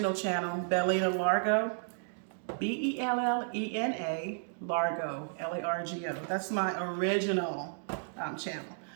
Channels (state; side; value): silent; left; digital silence